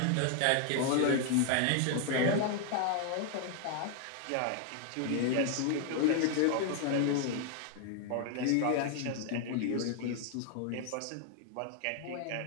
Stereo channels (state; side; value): different; both; correlation 0.00